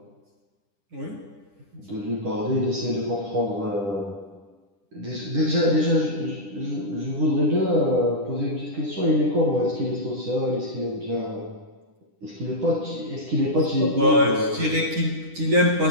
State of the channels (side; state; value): left; late; 10 ms